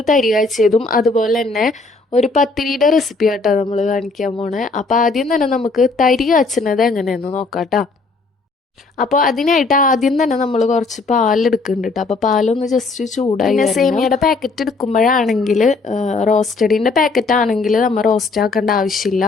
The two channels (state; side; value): quieter; right; 3.8 dB